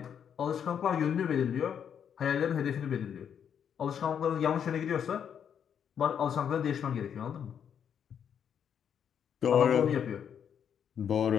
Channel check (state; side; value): quieter; right; 8.2 dB